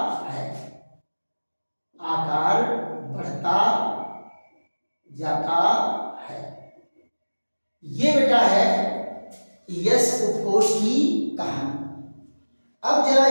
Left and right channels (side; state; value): both; inverted; correlation -1.00